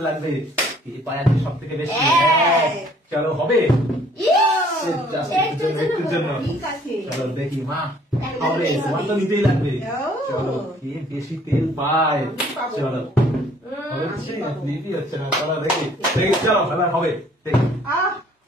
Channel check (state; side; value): normal; both; correlation 0.59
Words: লাগবে। এই পায়ে আছে সব থেকে বেশি। চলো হবে একটুর জন্য। চলো দেখি মা হবে, তোমার তো নিতেই লাগবে। চলো কে বেশি তেল পায়। চলো হচ্ছে না, ক্লিকই হচ্ছে না। চলো দেখি চলো খেলা হবে, দেখি